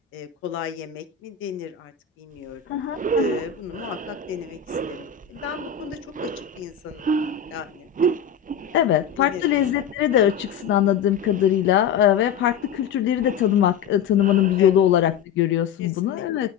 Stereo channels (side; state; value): right; quieter; 7.7 dB